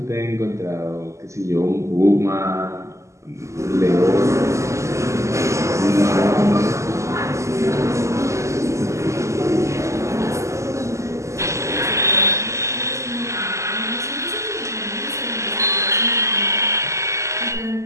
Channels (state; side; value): late; left; 0.14 ms